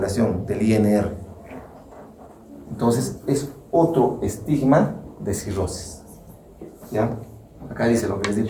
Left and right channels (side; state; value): both; identical; correlation 1.00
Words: del INR. Entonces, es otro estigma de cirrosis. ¿Ya? Acá dice lo que les di